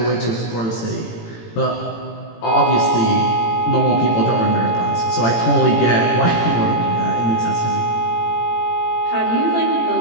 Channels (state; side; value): late; right; 18 ms